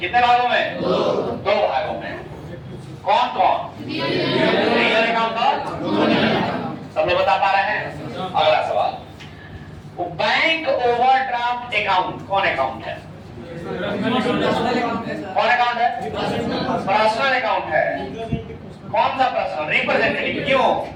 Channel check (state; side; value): identical; both; correlation 1.00